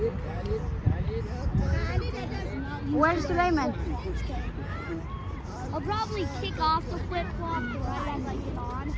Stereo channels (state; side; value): identical; both; correlation 1.00